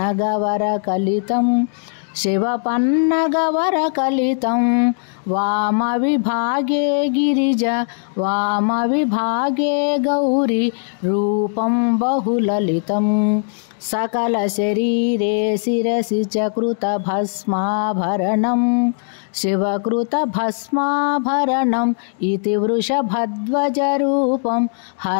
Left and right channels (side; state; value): right; silent; 66 dB below the other